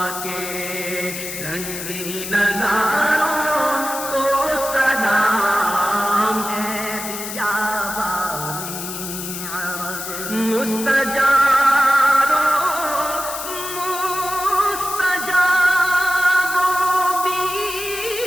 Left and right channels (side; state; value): left; noise; hiss, 7 dB below the sound